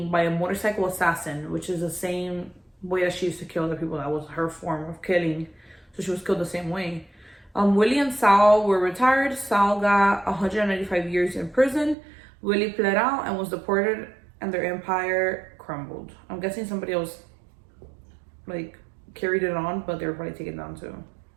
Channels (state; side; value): drops out; left; at 12.0 s